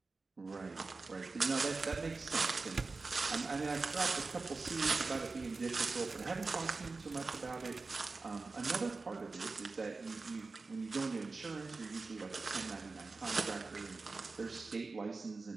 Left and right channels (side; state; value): left; quieter; 3.9 dB